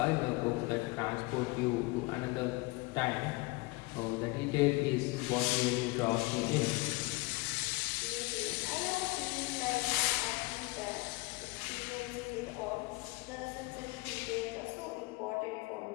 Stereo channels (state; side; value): quieter; right; 24.1 dB